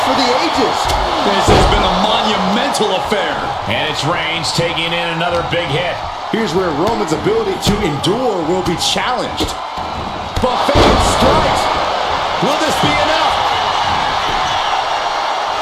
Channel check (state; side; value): identical; both; correlation 1.00